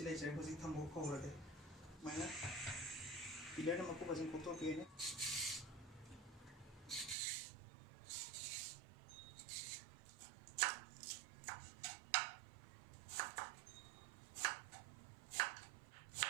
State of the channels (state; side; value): drops out; left; at 7.2 s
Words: जय होजी थम्बौ खोरगे माइना पिलर मको बजन कोतो पेने